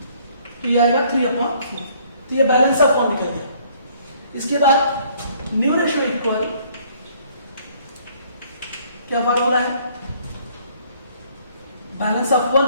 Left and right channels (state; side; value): inverted; both; correlation -0.61